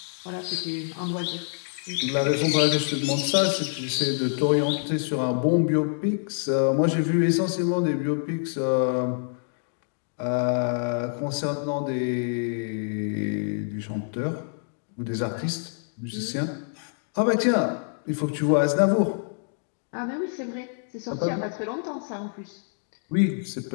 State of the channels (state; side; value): silent; right; digital silence